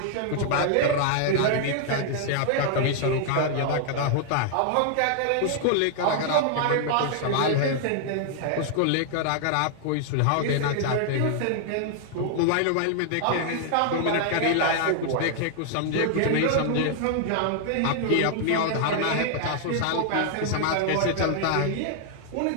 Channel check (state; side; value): different; both; correlation 0.00